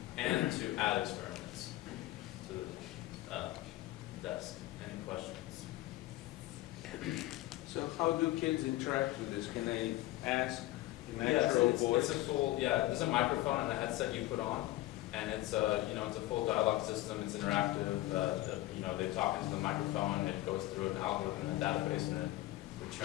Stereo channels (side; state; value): right; quieter; 16.9 dB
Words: and to add experiments to the desk. Any questions? So how do kids interact with this? Can they ask in Yes, natural voice? it's a full, there's a microphone and a headset you put on, and it's a full dialogue system. It's interactive. They talk into the microphone. It goes through an algorithm and a database, and it